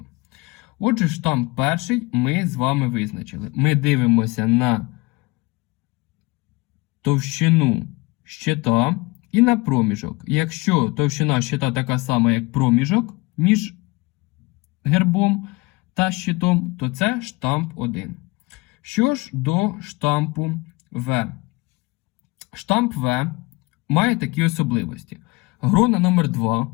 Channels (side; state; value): right; quieter; 24.1 dB